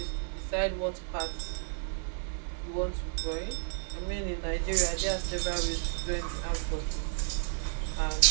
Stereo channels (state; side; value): silent; left; digital silence